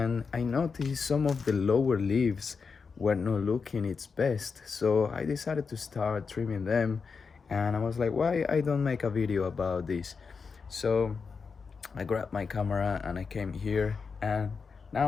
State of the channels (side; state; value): right; quieter; 5.3 dB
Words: I noticed some of the lower leaves were not looking its best. So I decided to start trimming them, and I was like, why I don't make a video about this? So I grabbed my camera and I came here, and now